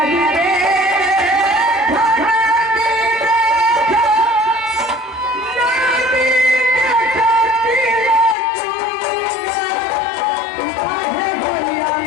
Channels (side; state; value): right; drops out; at 8.3 s